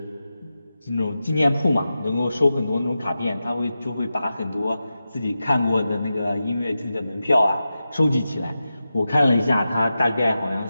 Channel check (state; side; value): inverted; both; correlation -0.92